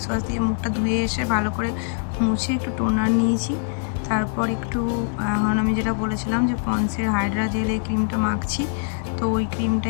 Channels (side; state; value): right; silent; digital silence